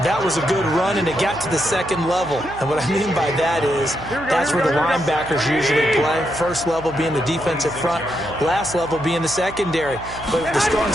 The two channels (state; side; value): noise; right; hum, 15 dB below the sound